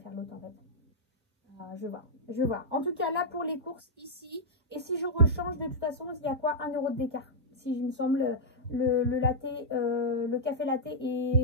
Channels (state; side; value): normal; both; correlation -0.08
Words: l'autre en fait. Je vais voir. Je vais voir. En tout cas là pour les courses ici. Et si je rechange de toute façon, il y a quoi 1 € d'écart. Si il me semble le café latte